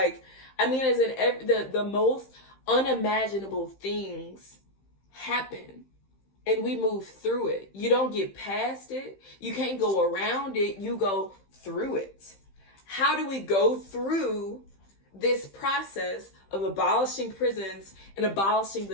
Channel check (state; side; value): late; right; 15 ms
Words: as in the most unimaginable things happen. And we move through it. You don't get past it. You can't go around it. You go through it. How do we go through this process of abolishing prisons and abolishing